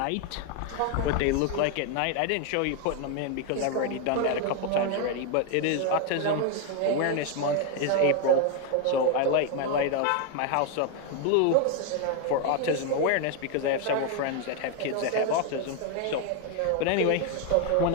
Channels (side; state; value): both; different; correlation 0.01